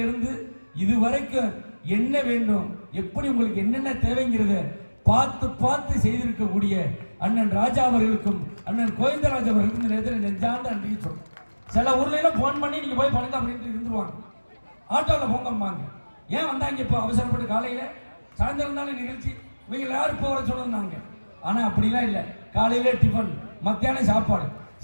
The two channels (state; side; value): inverted; both; correlation -1.00